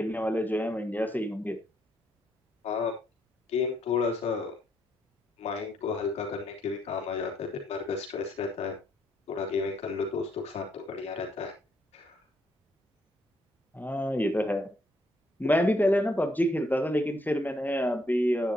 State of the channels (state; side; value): normal; both; correlation 0.73